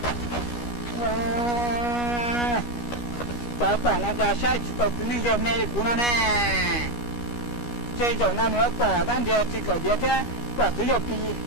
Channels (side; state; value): right; late; 12 ms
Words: 早把那家下去到这里就没顾了呢。这种那你要把咱这个这天把只有比，